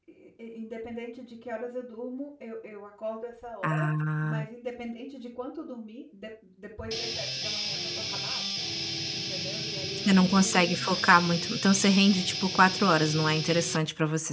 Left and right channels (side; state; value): both; identical; correlation 1.00